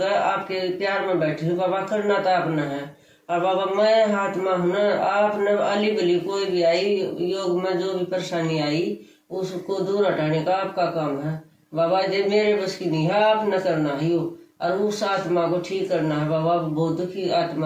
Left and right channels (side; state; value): both; identical; correlation 1.00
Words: आपके प्यार में बैठी हूँ बाबा, करना तो आपने है। और बाबा मैं आत्मा हूँ ना, आपने अली बली कोई भी आई योग में जो भी परेशानी आई उसको दूर हटाने का आपका काम है बाबा। ये मेरे बस की नहीं है, आपने करना है यो, और उस आत्मा को ठीक करना है बाबा। बहुत दुखी